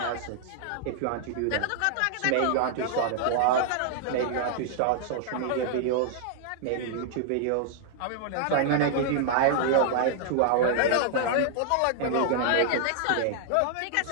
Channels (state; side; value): different; both; correlation -0.01